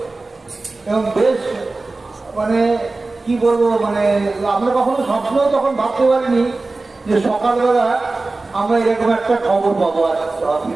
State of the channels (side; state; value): left; quieter; 3.4 dB